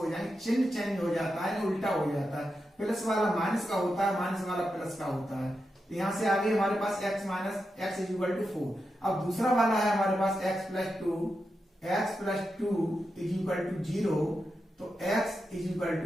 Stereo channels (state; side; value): normal; both; correlation 0.88